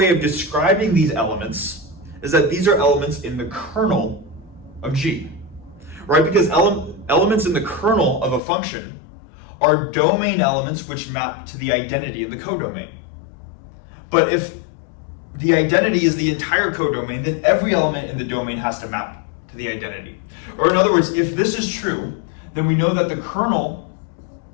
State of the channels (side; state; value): right; drops out; at 8.4 s